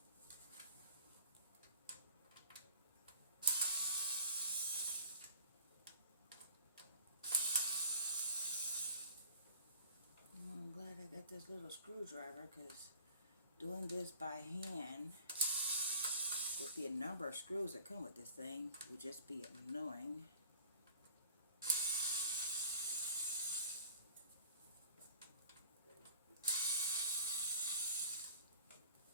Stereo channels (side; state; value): both; inverted; correlation -0.47